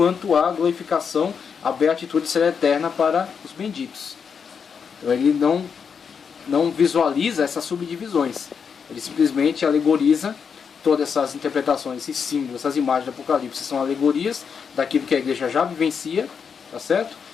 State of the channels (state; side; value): quieter; right; 6.4 dB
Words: a glorificação, a beatitude será eterna para os benditos. Então ele não visualiza essas subdivisões, ele simplesmente alegoriza todas essas interpretações, esses símbolos, essas imagens do Apocalipse, são alegorias daquilo que a igreja já vivencia, tá certo?